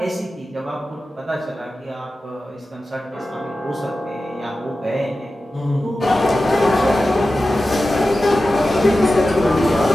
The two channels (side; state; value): both; normal; correlation 0.93